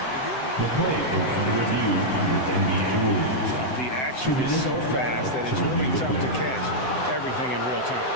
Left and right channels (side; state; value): right; late; 7.8 ms